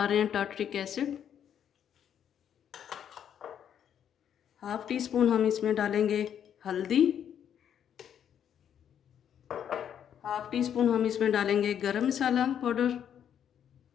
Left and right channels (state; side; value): quieter; right; 9.1 dB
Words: रहे हैं टार्टरिक एसिड। 1/2 टीस्पून हम इसमें डालेंगे हल्दी। 1/2 टीस्पून हम इसमें डालेंगे गरम मसाला पाउडर।